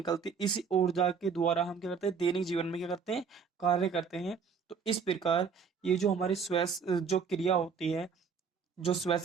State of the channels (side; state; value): left; quieter; 6.0 dB